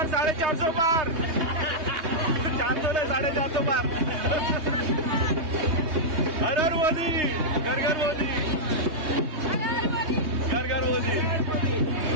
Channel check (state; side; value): late; left; 3.2 ms